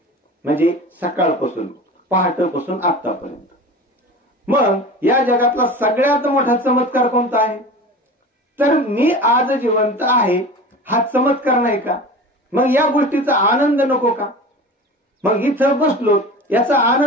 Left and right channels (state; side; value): normal; both; correlation 0.35